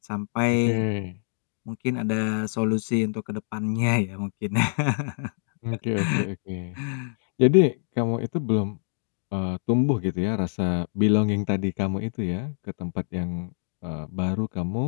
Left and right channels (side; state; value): right; silent; digital silence